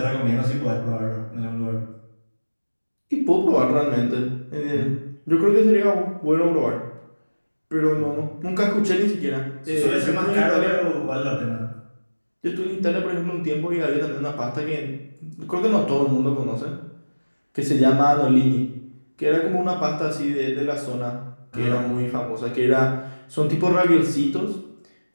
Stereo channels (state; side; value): inverted; both; correlation -1.00